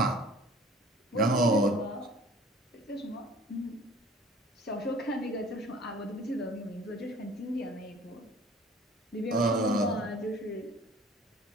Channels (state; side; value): normal; both; correlation 0.49